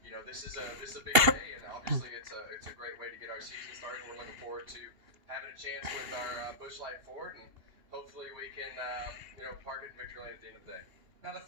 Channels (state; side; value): late; left; 2.8 ms